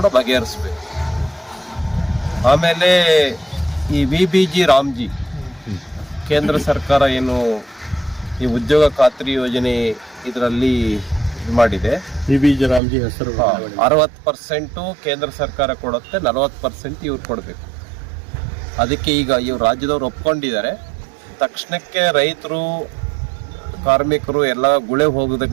ಬಗೆಹರಿಸ್ಬೇಕು. ಆಮೇಲೆ ಈ VBG ರಾಮ್ಜಿ ಕೇಂದ್ರ ಸರ್ಕಾರ ಏನು ಈ ಉದ್ಯೋಗ ಖಾತ್ರಿ ಯೋಜನೆ ಇದರಲ್ಲಿ ಇದು ಮಾಡಿದೆ. VBG ರಾಮ್ಜಿ ಹೆಸರು 60% ಕೇಂದ್ರ ಸರ್ಕಾರ ಕೊಡುತ್ತೆ, 40% ಇವ್ರು ಕೊಡಬೇಕು. ಅದಕ್ಕೆ ಈಗ ಇವ್ರು ರಾಜ್ಯದವ್ರು ಒಪ್ಕೊಂಡಿದ್ದಾರೆ. ತಕ್ಷಣಕ್ಕೆ ರೈತರು, ಕಾರ್ಮಿಕರು ಎಲ್ಲ ಗುಳೆ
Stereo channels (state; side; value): drops out; left; at 12.8 s